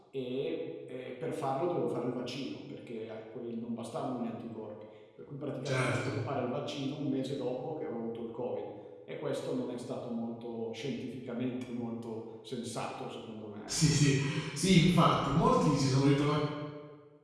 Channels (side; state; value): both; identical; correlation 1.00